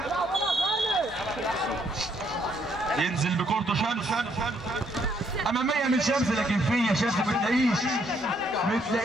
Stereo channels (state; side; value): normal; both; correlation 0.70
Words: ينزل بكورته شمس اماميه من شمس. لكن فين يا شمس؟ ما